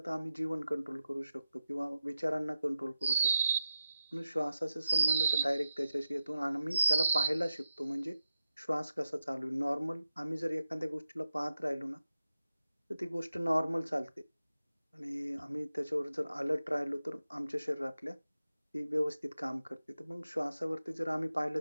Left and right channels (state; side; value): inverted; both; correlation -0.90